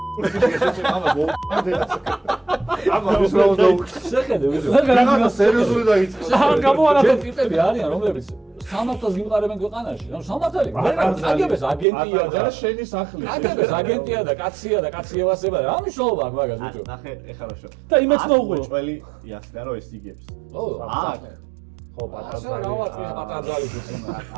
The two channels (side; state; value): left; drops out; at 11.9 s